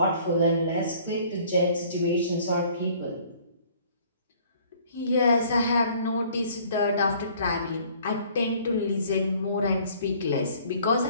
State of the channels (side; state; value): both; inverted; correlation -0.55